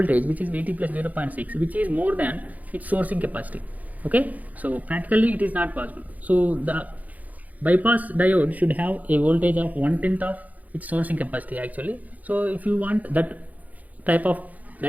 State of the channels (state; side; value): late; left; 0.078 ms